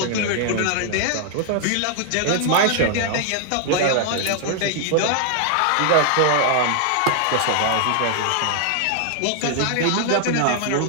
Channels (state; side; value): different; both; correlation 0.00